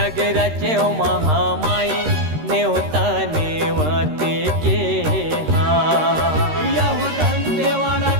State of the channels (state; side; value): late; left; 13 ms